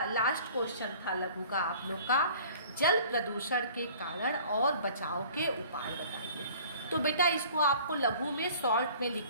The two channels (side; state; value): both; inverted; correlation -0.49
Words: लास्ट क्वेश्चन था लघु का आप लोग का, जल प्रदूषण के कारण और बचाव के उपाय बताइए। तो बेटा इसको आपको लघु में शॉर्ट में